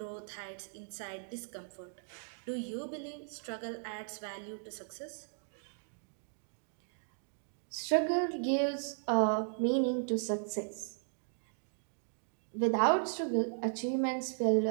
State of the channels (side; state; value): left; silent; digital silence